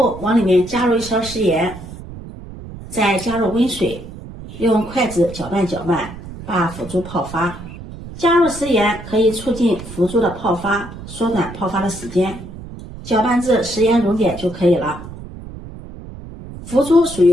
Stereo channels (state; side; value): noise; right; rumble, 13 dB below the sound